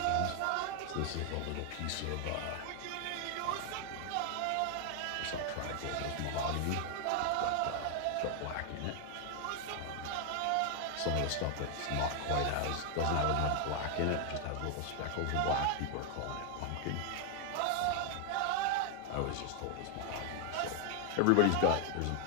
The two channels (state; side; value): different; both; correlation 0.00